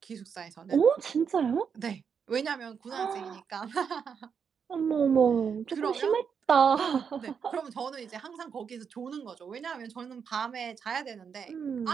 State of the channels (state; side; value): quieter; left; 6.7 dB